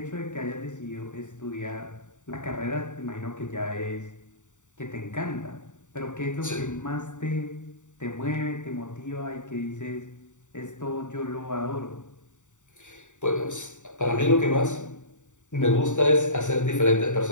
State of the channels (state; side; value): late; right; 0.85 ms